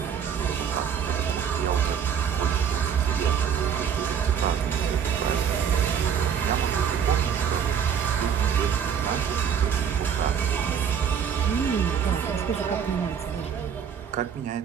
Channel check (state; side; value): quieter; left; 7.7 dB